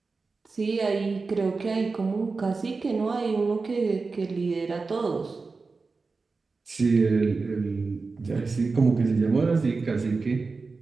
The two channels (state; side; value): quieter; left; 4.2 dB